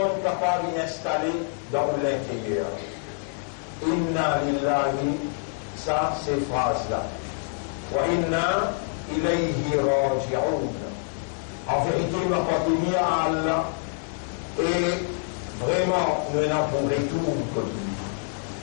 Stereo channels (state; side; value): silent; right; 61 dB below the other